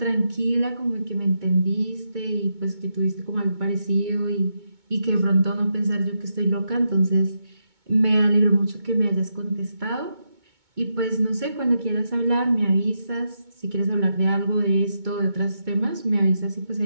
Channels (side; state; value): left; late; 2.2 ms